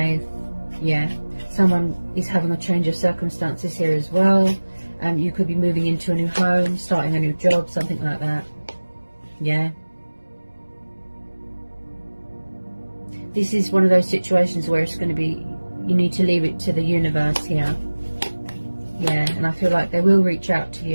Yeah. Someone is having a change of circumstances here as well. You could be moving into a new home, starting a new job, something like that. Yeah. This is one of those situations where it's going to be, you need to leave it to the universe here. Yeah, and I feel like they will reach out to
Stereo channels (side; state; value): both; inverted; correlation -1.00